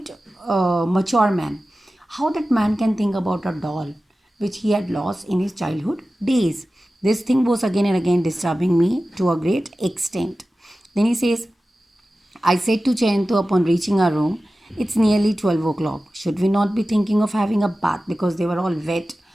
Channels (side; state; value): both; normal; correlation 0.95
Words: a mature man. How that man can think about a doll which he had lost in his childhood days? This thing was again and again disturbing me to a great extent. Then he says, I said to Jayanto upon reaching our room, it's nearly 12 o'clock. Should we not be thinking of having a bath? Because they were all wet